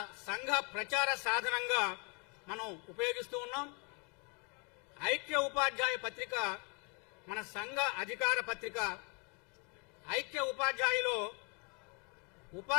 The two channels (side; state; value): right; quieter; 34.3 dB